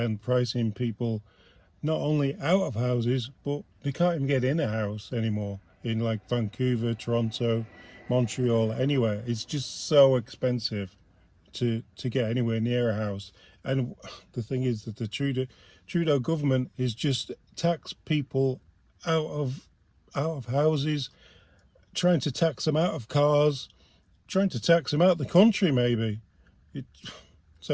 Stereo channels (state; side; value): identical; both; correlation 1.00